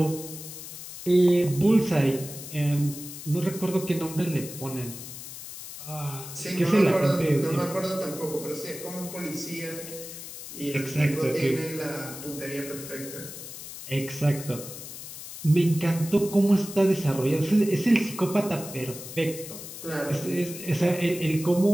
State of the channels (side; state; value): left; noise; hiss, 11 dB below the sound